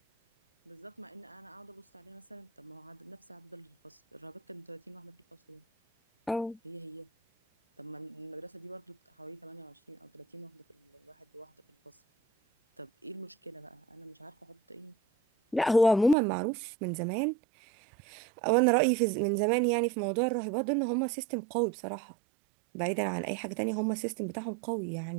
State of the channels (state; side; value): drops out; left; at 16.2 s